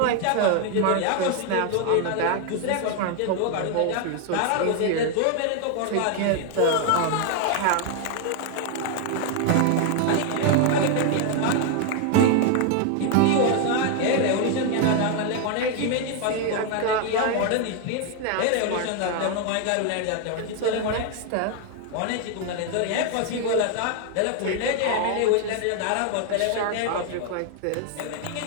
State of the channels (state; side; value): different; both; correlation 0.00